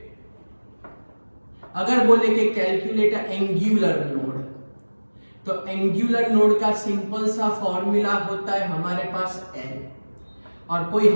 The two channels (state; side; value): inverted; both; correlation -1.00